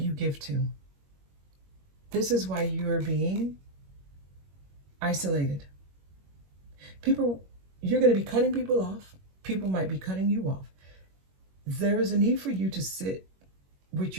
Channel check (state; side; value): late; left; 21 ms